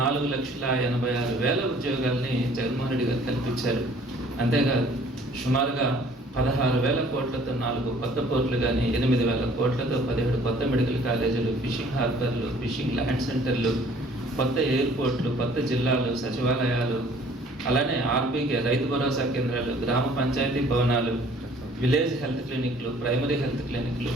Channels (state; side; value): normal; both; correlation 0.55